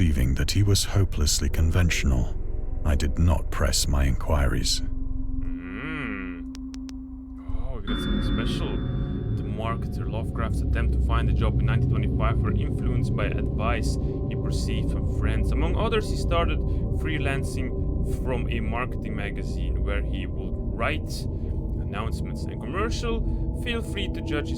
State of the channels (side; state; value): both; identical; correlation 1.00